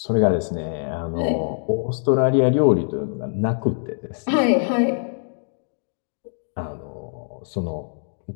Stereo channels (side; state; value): right; silent; digital silence